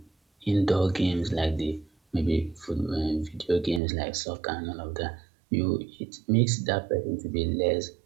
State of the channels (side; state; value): left; drops out; at 3.8 s